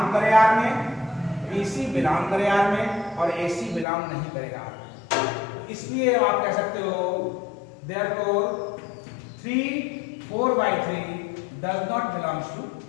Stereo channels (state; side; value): drops out; right; at 3.9 s